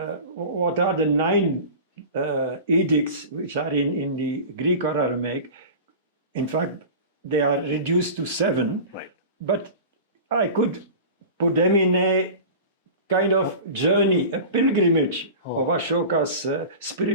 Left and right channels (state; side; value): inverted; both; correlation -0.34